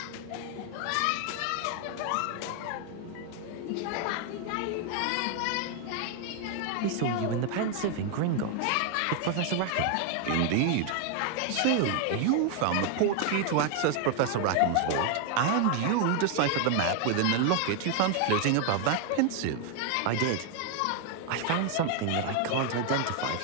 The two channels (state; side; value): different; both; correlation 0.00